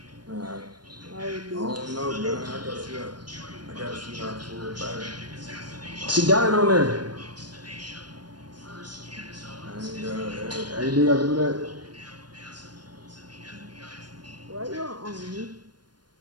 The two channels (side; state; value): left; late; 0.70 ms